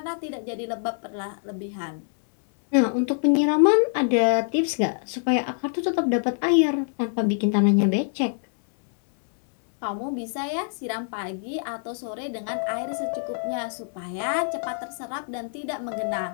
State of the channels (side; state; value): right; silent; digital silence